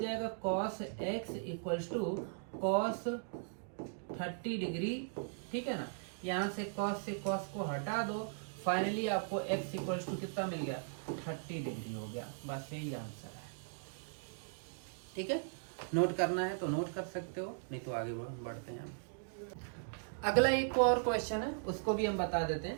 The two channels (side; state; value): left; silent; digital silence